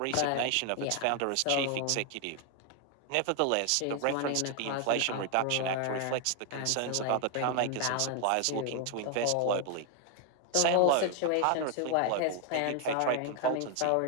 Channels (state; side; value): different; both; correlation 0.00